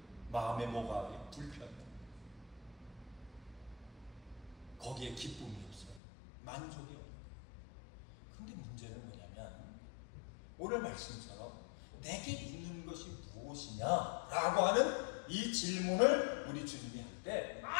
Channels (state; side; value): drops out; right; at 6.0 s